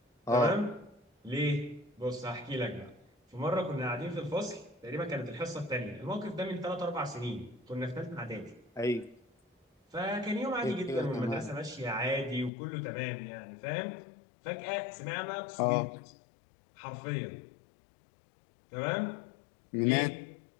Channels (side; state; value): right; drops out; at 12.5 s